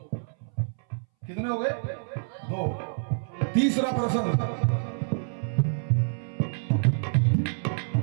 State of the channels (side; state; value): left; silent; 60 dB below the other